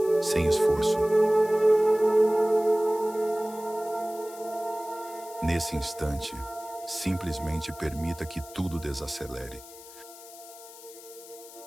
sem esforço. Nesse instante, simplesmente permita que tudo desacelere.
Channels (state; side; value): noise; left; hiss, 18 dB below the sound